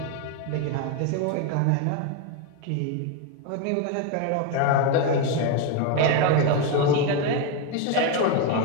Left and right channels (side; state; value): both; different; correlation 0.02